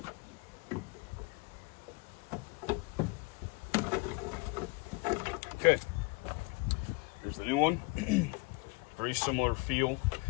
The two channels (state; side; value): quieter; right; 27.6 dB